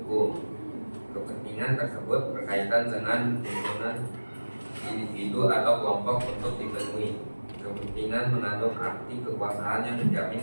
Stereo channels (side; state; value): both; inverted; correlation -1.00